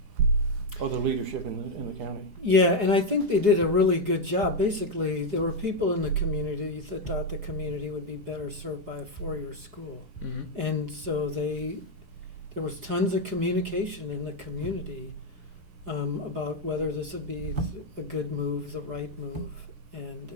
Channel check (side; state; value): left; late; 4.8 ms